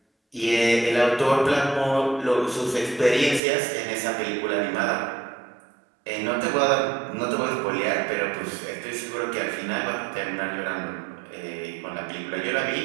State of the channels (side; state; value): left; drops out; at 3.4 s